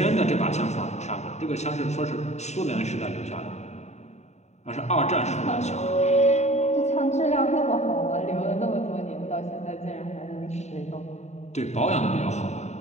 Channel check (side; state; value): right; late; 0.32 ms